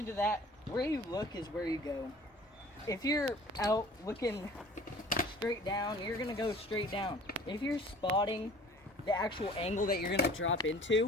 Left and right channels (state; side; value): normal; both; correlation 0.48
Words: to that, where you look is where you go. If you're out looking straight down, you're gonna go straight down. If you're spotting the actual angle that you're gonna drop